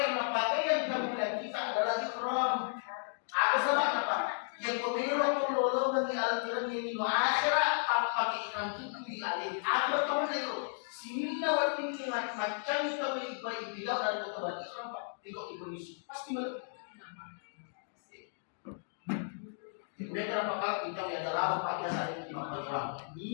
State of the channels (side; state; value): right; silent; digital silence